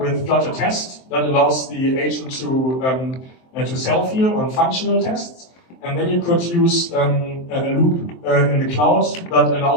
Flutter test that allows the agent to self-heal on functional tests. And then you could use a loop in the cloud that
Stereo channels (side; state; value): right; late; 23 ms